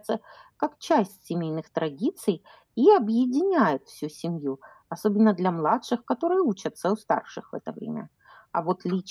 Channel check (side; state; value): both; identical; correlation 1.00